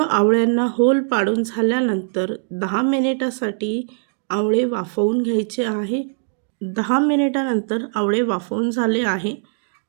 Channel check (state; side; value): silent; left; digital silence